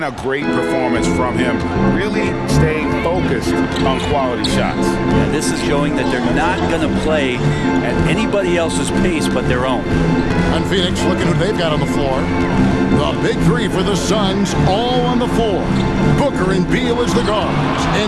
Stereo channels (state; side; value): identical; both; correlation 1.00